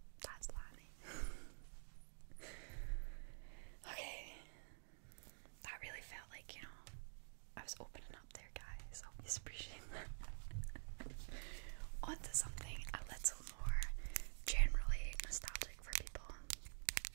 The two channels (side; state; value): left; silent; digital silence